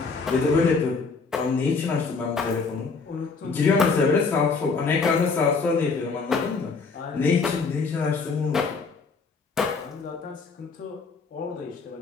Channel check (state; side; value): quieter; right; 4.6 dB